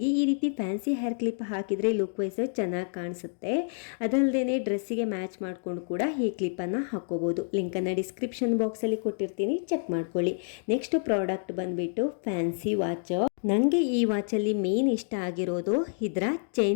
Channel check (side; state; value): right; silent; digital silence